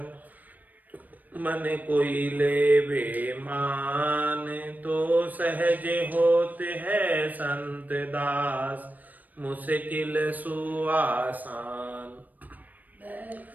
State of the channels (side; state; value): left; late; 0.082 ms